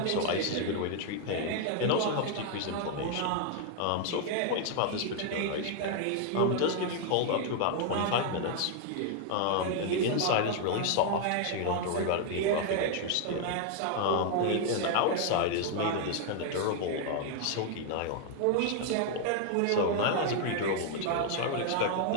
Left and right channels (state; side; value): different; both; correlation 0.00